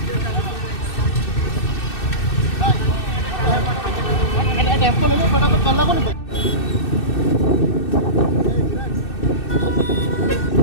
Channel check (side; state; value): right; late; 2.6 ms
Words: टेम्पो ले लो फटाफट, कल को नहीं।